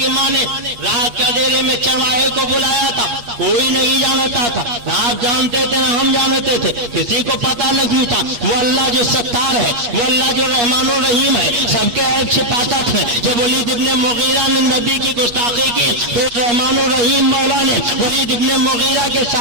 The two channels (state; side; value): late; left; 8.3 ms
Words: ماں نے رات کے اندھیرے میں چرواہے کو بلایا تھا، کوئی نہیں جانتا تھا، نہ آپ جانتے تھے نہ ہم جانتے تھے، کسی کو پتہ نہیں تھا۔ وہ اللہ جو ستار ہے، وہ اللہ جو رحمان و رحیم ہے، سب کے عیب چھپاتا تھا۔ جب ولید ابن مغیرہ نے نبی کی گستاخی کی تو رحمان و رحیم مولا نے ولید ابن مغیرہ کے